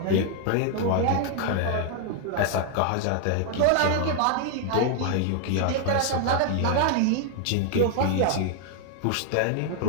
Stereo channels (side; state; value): both; different; correlation 0.00